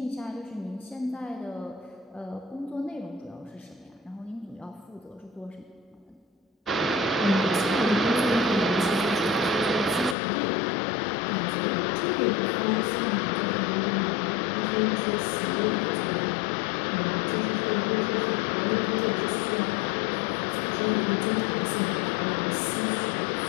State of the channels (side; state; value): right; drops out; at 10.2 s